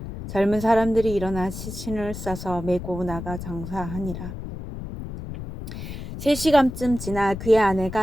젊은 사람들이 일어나 시신을 싸서 메고 나가 장사하니라. 3시간쯤 지나 그의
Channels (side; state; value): left; noise; rumble, 9 dB below the sound